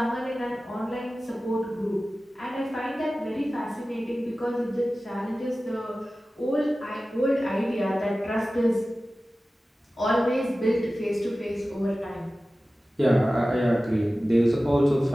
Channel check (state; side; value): normal; both; correlation 0.96